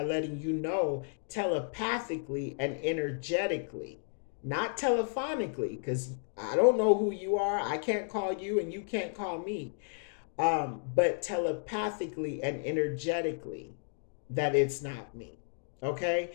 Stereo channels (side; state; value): right; silent; digital silence